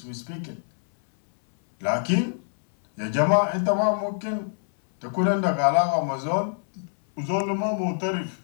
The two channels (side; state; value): right; silent; 62 dB below the other